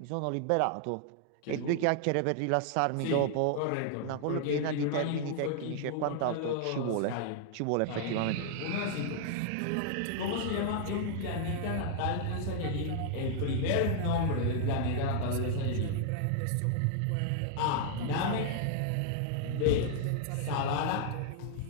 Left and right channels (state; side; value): different; both; correlation -0.01